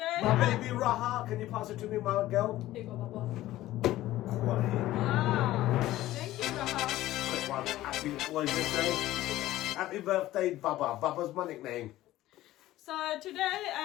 My baby Raha, can you pass it to me, my girl? Here you go, Baba. Quality. Wow. Thank you, Raha. Quick one. Happy, what did you say? Happy birthday, Baba. Baba's my nickname. So today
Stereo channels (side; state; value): right; quieter; 15.5 dB